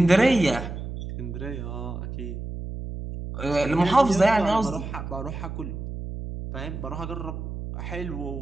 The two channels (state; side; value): noise; right; hum, 7 dB below the sound